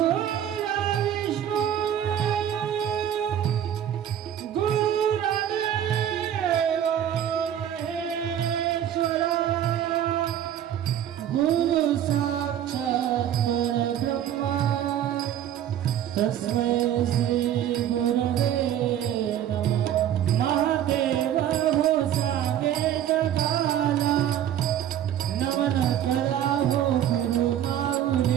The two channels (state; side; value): quieter; left; 10.6 dB